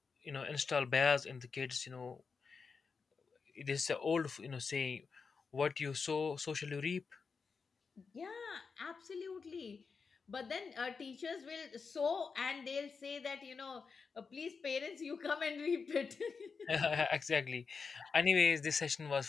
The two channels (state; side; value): quieter; right; 5.2 dB